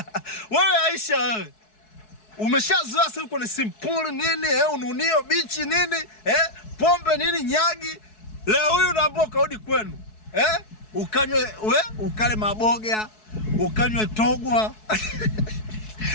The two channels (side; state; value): right; late; 4.7 ms